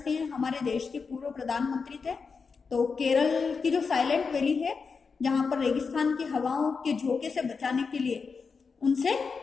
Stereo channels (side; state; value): right; quieter; 5.1 dB